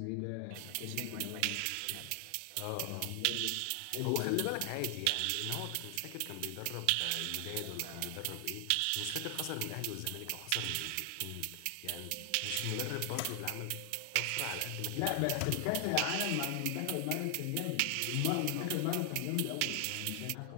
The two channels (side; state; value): both; different; correlation 0.00